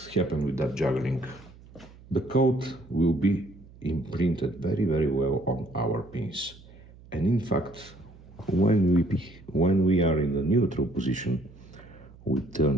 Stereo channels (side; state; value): right; noise; hum, 22 dB below the sound